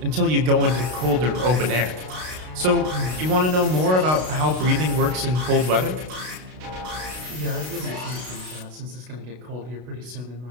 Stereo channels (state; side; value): late; left; 32 ms